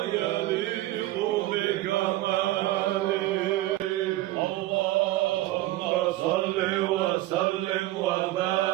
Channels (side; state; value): left; quieter; 16.4 dB